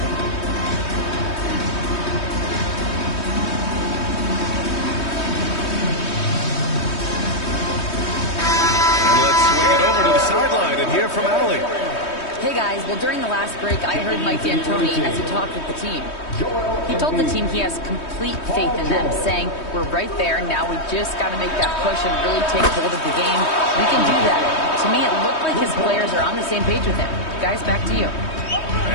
Well, during the last break, I heard Mike D'Antoni as he talked with the team. He told the team he has complete faith in them, saying, we're right there, now we just got to make that push and really take hold of the game. We can do that. To me, it looked like his players are on the same page with him. Guys, back to you.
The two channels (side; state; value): right; late; 3.2 ms